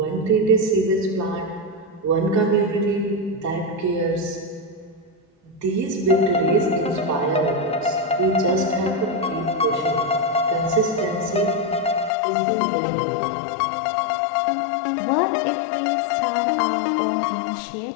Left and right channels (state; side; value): drops out; right; at 12.1 s